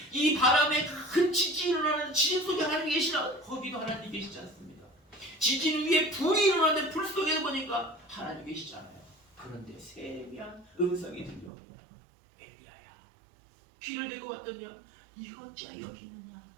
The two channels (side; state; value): left; drops out; at 11.5 s